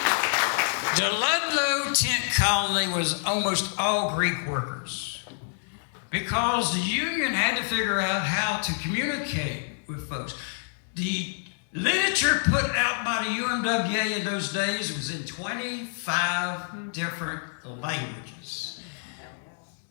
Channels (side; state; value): right; silent; digital silence